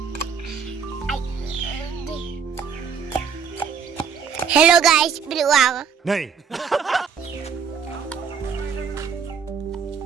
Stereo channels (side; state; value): left; quieter; 6.6 dB